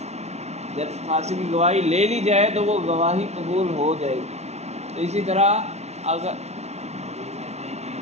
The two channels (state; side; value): late; left; 0.31 ms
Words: جب فاسق کی گواہی لے لی جائے تو وہ گواہی قبول ہو جائے گی۔ تو اسی طرح اگر